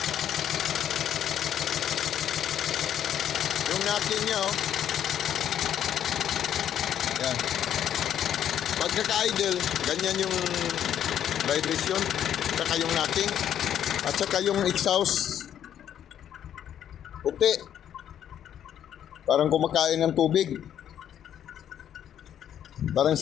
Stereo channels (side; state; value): right; quieter; 10.1 dB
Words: Yung knocking niya oh. Yan. Pagkaka-idle, ganyan yung vibration, saka yung knocking, at saka yung exhaust. Puti. Parang kumakain ng tubig. Parang